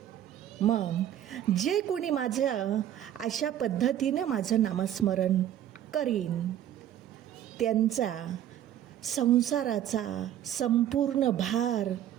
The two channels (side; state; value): left; quieter; 11.2 dB